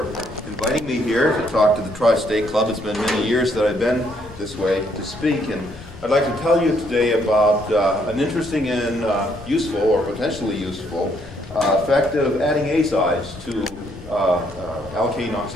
inviting me here to talk to the Tri-State Club. It's been many years that I've been this way to speak, and I'd like to tell you today about an interesting and useful, or potentially useful, effect of adding azides to alkane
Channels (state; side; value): noise; left; rumble, 18 dB below the sound